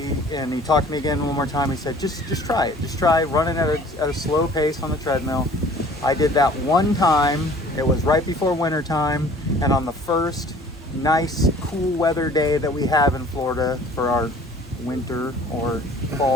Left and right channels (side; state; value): both; normal; correlation 0.50